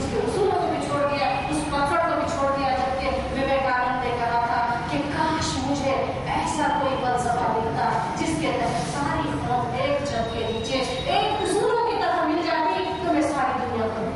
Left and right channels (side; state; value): both; identical; correlation 1.00